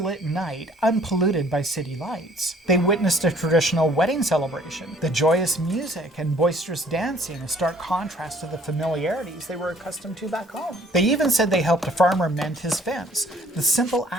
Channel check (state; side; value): normal; both; correlation 0.58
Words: night unpolluted by city lights. They witnessed a traditional wedding celebration, the joyous music and boisterous dancing, a stark contrast to the familiarities they were accustomed to back home. They even said they helped a farmer mend his fence, the simple